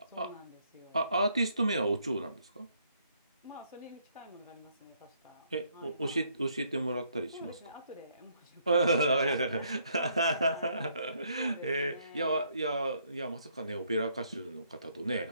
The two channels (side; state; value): both; inverted; correlation -0.69